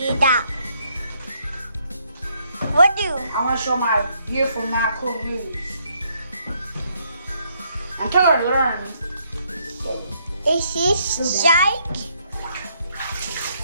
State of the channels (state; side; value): inverted; both; correlation -0.72